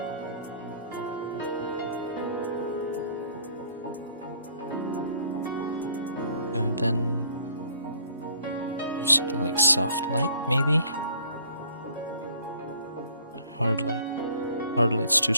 And then something like soft light, maybe? Hard light. Hard light's too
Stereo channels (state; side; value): inverted; both; correlation -0.58